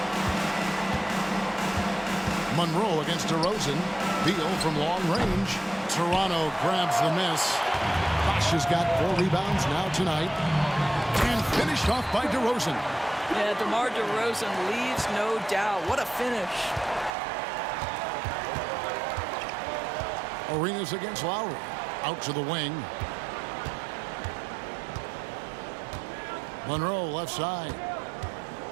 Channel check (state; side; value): drops out; left; at 17.1 s